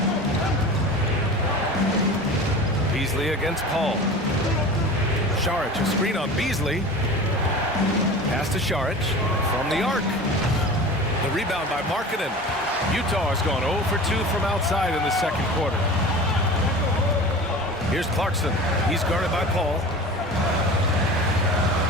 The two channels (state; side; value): normal; both; correlation 0.36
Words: Beasley against Paul. Saric, a screen on Beasley. Pass to Saric from the arc. The rebound by Markkanen. Utah has gone 0 for 2 from outside in the second quarter. Here's Clarkson. He's guarded by Paul.